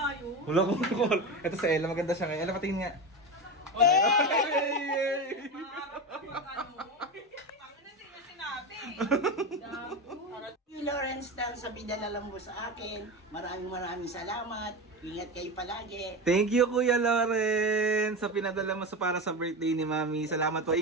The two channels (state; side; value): normal; both; correlation 0.21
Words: yun. Wala kong call. Ito si Ella, maganda siya ngayon. Ella, patingin nga. Lawrence Dan sa pinadala mo sa akin. Maraming salamat. Ingat kayo palagi. Thank you, Kuya Loren, sa pinadala mo para sa birthday ni Mami. Salamat po.